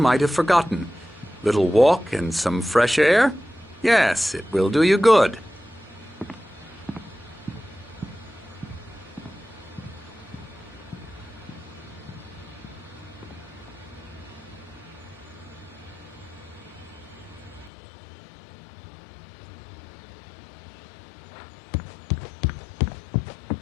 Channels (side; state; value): right; drops out; at 17.7 s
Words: have forgotten. Little walk and some fresh air? Yes, it will do you good.